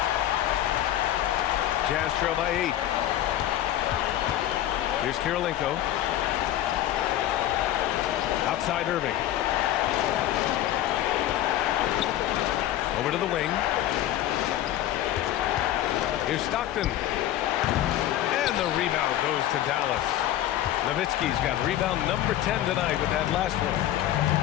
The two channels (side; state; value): right; quieter; 12.9 dB